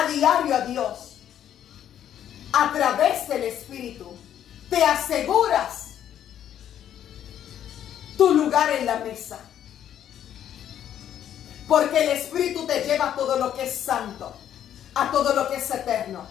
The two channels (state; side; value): quieter; right; 10.3 dB